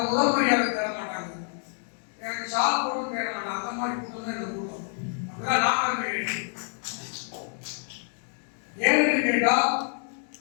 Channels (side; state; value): right; silent; 60 dB below the other